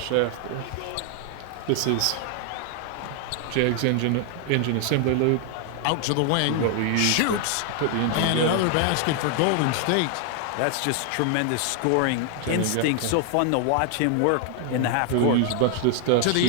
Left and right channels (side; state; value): both; different; correlation 0.00